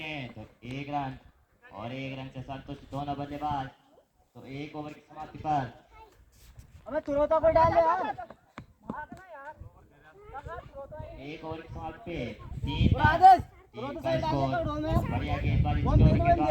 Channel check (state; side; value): identical; both; correlation 1.00